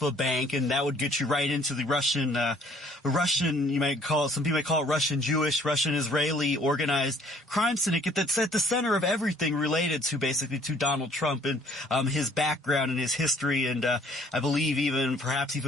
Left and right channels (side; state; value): both; normal; correlation 0.59